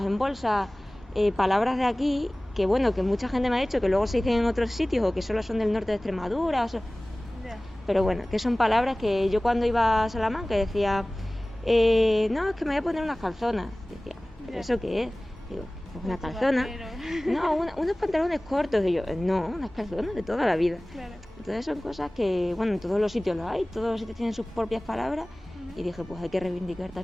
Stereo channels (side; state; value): both; normal; correlation 0.98